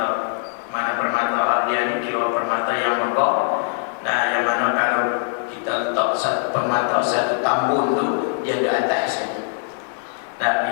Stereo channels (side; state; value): right; silent; 56 dB below the other